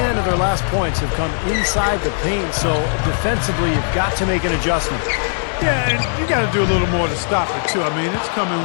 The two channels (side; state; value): right; silent; digital silence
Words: of their last points have come inside the paint, so defensively you've got to make an adjustment. Yeah, and you got to do a little more to stop it, too. I mean, it's